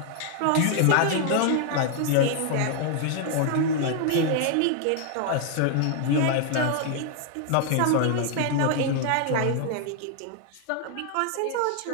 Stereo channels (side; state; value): both; different; correlation 0.00